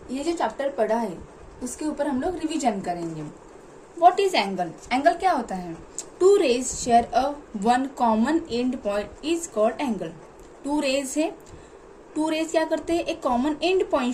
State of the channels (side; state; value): both; identical; correlation 1.00